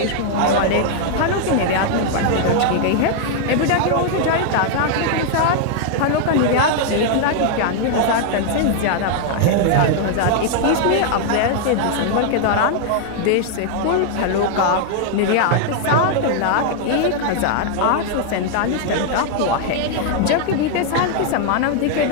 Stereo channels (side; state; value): both; different; correlation 0.00